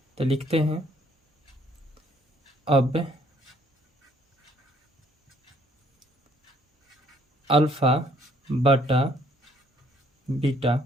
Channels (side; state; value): both; normal; correlation 0.64